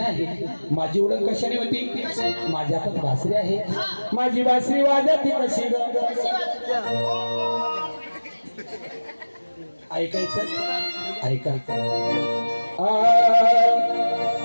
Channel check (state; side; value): inverted; both; correlation -1.00